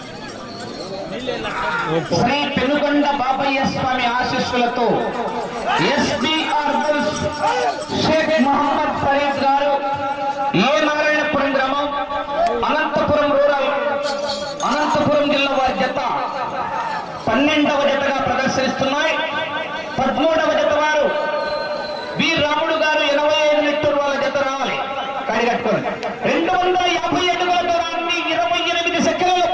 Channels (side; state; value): both; identical; correlation 1.00